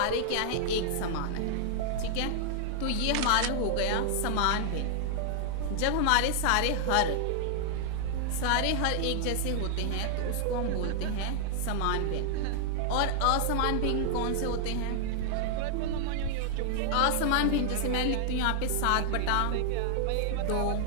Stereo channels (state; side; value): different; both; correlation 0.00